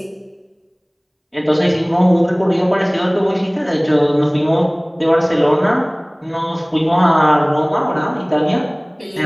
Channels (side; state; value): both; identical; correlation 1.00